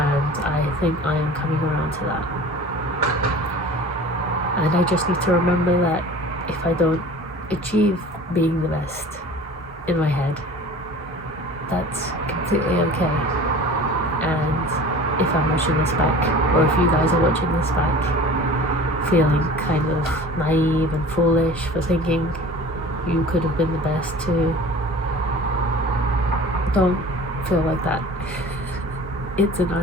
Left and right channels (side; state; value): both; normal; correlation 0.42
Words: I think I am coming around to that. And I just need to remember that if I don't achieve being the best in my head, that's completely okay. And if I'm watching this back, or if you guys are watching this back, feeling kind of naive and foolish for thinking you could have been the best too, don't feel like that. It's an